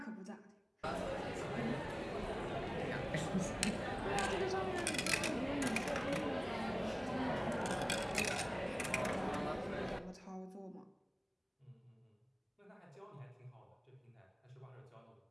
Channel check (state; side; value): identical; both; correlation 1.00